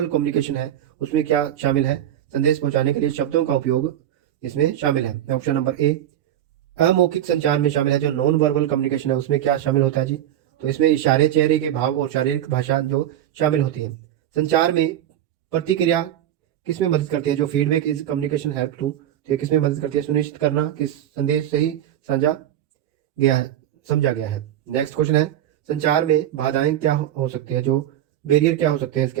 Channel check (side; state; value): left; quieter; 11.7 dB